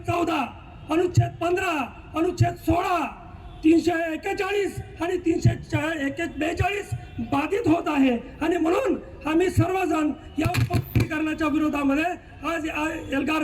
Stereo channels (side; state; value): both; identical; correlation 1.00